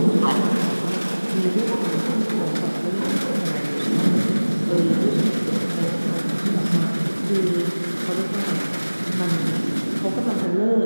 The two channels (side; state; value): both; inverted; correlation -1.00